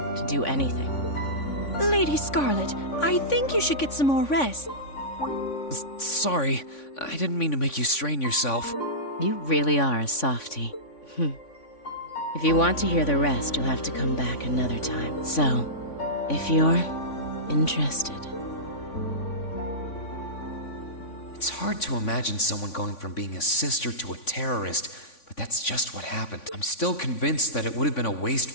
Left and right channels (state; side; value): late; right; 3.5 ms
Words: do anything. Lady Scarlet, I think you should get some more rest. Sorry, I didn't mean to make you strain yourself. You really are a softie. If you want to hear the rest, you'll have to come back another time. So, if you're interested. It's hard to imagine someone going from being a sister to a terrorist, but that's just what happened. I'm still convinced that it would have been a waste